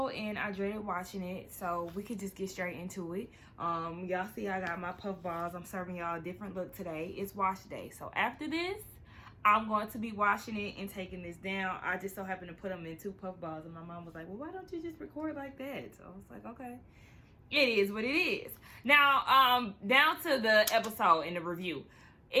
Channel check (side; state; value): both; identical; correlation 1.00